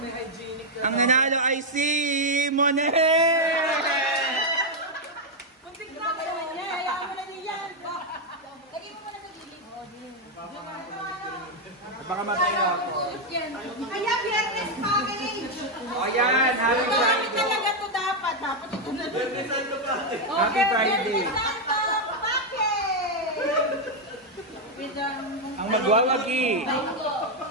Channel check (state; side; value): normal; both; correlation 0.01